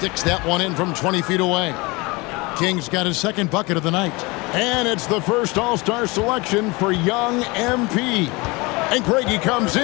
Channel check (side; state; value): right; quieter; 25.0 dB